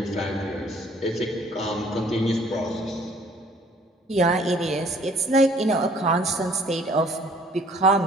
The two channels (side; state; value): both; normal; correlation 0.58